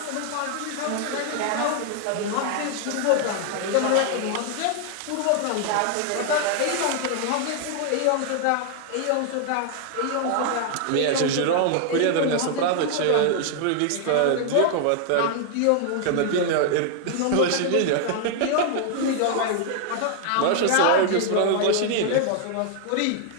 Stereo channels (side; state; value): both; different; correlation 0.00